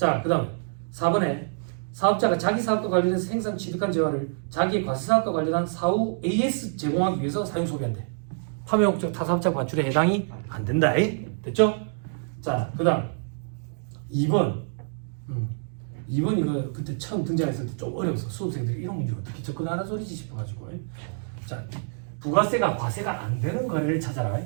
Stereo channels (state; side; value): silent; left; digital silence